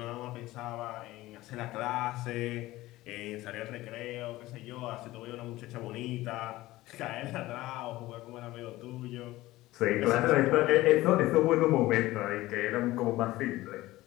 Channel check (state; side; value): quieter; right; 17.6 dB